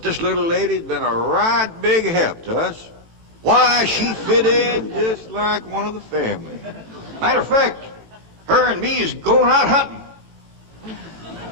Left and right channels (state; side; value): late; left; 18 ms